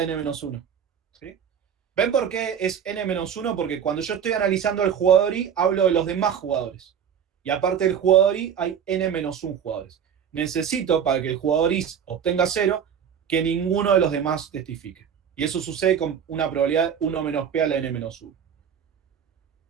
N-1. ¿Sí? ¿Ven por qué es N-1? Porque cuando yo estoy analizando el jugador I, hablo de los demás jugadores. Y aparte del jugador I, hay N-1 jugadores. Necesito, para que el jugador I obtenga 0, que ninguno de los demás testifique. Y eso sucede con una probabilidad de 1 menos P a la N-1.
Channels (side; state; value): left; quieter; 8.1 dB